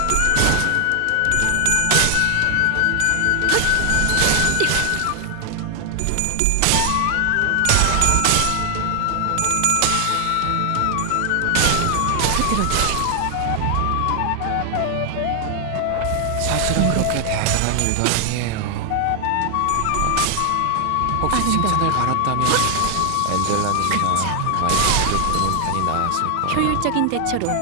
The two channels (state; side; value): different; both; correlation 0.00